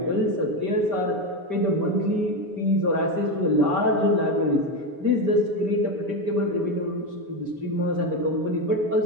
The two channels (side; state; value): left; late; 6.9 ms